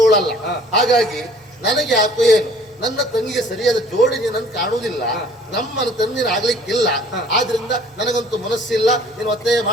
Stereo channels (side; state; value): both; normal; correlation 0.53